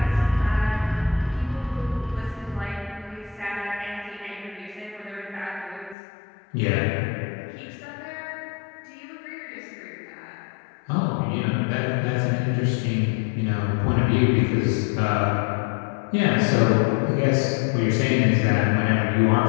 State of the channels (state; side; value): drops out; right; at 6.0 s